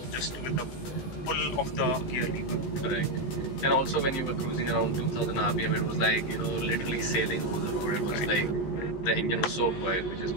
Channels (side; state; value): right; late; 15 ms